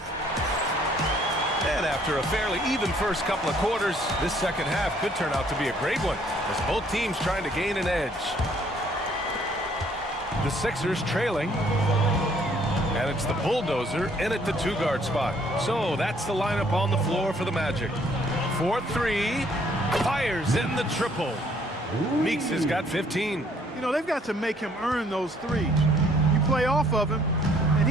After a fairly even first couple of quarters, this second half could turn out to be a great one as both teams trying to gain an edge. The Sixers trailing, and it's the bulldozer in at the 2-guard spot. So that's the lineup on the floor for the Magic. 4-3, fires in the triple. Meeks has got 15. You know, they've got to make him earn those threes. You play off of him, and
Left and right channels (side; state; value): both; normal; correlation 0.63